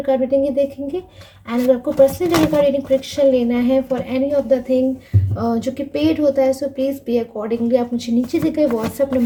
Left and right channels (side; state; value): both; identical; correlation 1.00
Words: कार्ड रीडिंग ही देखेंगे। एंड अगर आपको personal tarot card reading prediction लेना है for any of the thing जो कि पेड होता है, सो प्लीज़ पे अकॉर्डिंगली आप मुझे नीचे दिए गए व्हाट्सअप